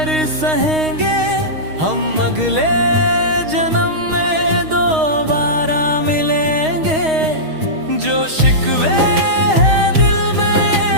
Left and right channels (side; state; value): left; late; 6.4 ms